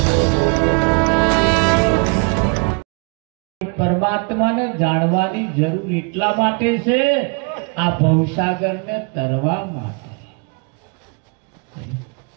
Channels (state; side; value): quieter; left; 33.8 dB